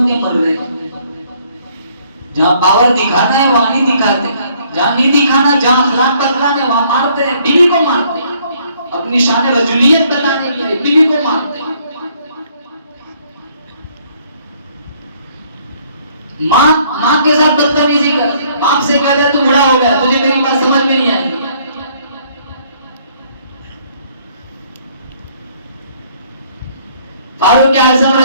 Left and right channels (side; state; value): both; inverted; correlation -0.64